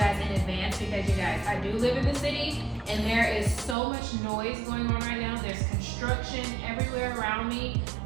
in advance, because you guys, I do live in the city and there is so much noise going on right now. There's construction everywhere around me.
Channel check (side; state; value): left; drops out; at 3.8 s